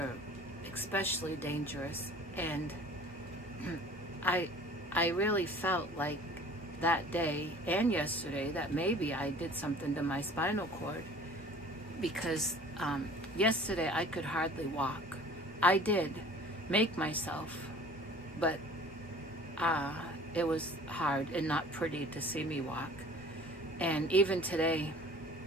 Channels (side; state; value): both; normal; correlation 0.47